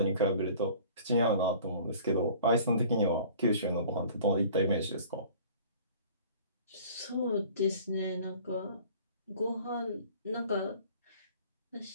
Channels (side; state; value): both; inverted; correlation -0.48